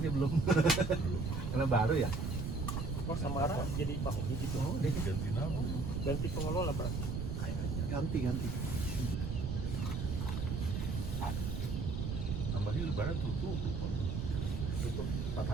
belum. Karena baru ya. Oh, Samara jadi mahoni gitu. Oh, Ganti nama. Ganti pengelola berarti. kayaknya. Ganti. Tambahnya lebaran tutup lupa. Tutup 4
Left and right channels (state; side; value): noise; right; rumble, 2 dB below the sound